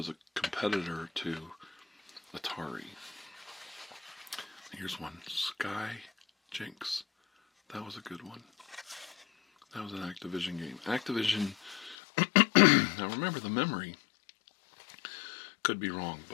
a competitor to Atari. Here's one. Sky Jinx. That was a good one. That was an Activision game. Activision, now remember the memory, could be wrong,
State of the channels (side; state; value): right; drops out; at 12.0 s